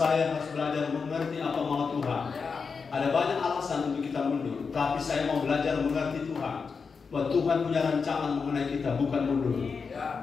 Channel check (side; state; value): right; quieter; 5.3 dB